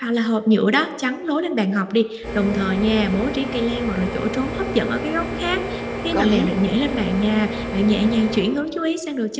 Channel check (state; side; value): identical; both; correlation 1.00